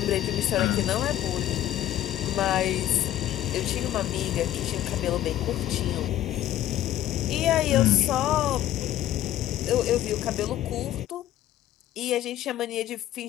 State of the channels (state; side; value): quieter; right; 12.9 dB